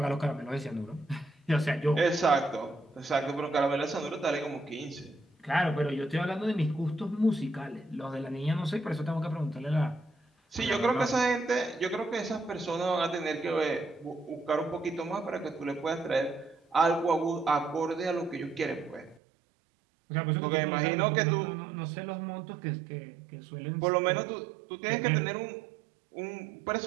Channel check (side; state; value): left; drops out; at 19.2 s